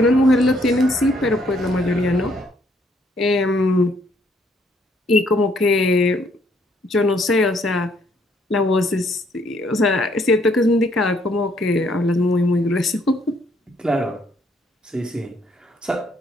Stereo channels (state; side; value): normal; both; correlation 0.68